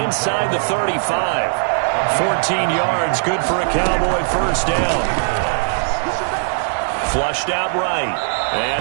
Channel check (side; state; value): left; silent; digital silence